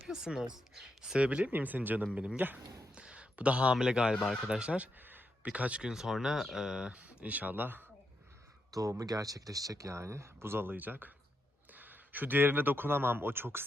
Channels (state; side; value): normal; both; correlation 0.83